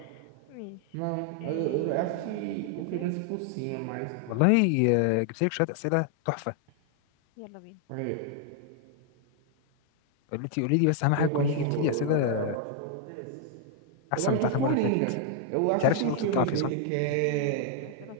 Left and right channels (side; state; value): both; different; correlation 0.00